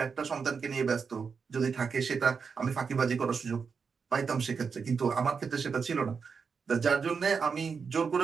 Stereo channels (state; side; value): quieter; left; 5.7 dB